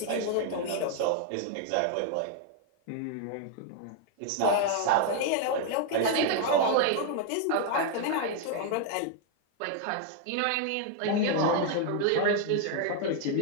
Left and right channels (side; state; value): both; different; correlation 0.00